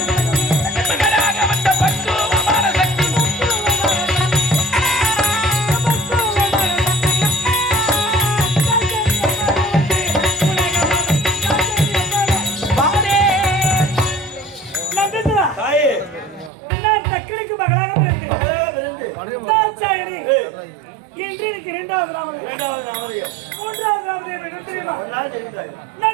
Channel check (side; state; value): left; drops out; at 16.5 s